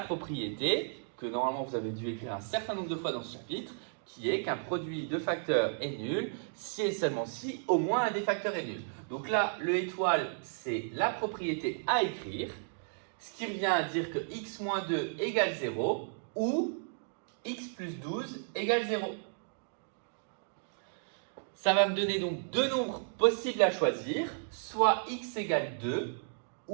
que normalement vous avez dû écrire un certain nombre de fois dans ce chapitre, qui est qu'un produit de facteurs est nul si et seulement si au moins un des facteurs est nul. Donc là, le étoile, c'est la propriété à écrire, ce qui revient à dire que x moins 2 égale 0 ou x plus 12 égale 0. Ça va me donner donc deux nombres possibles à choisir, soit x égale 2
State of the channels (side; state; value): left; silent; digital silence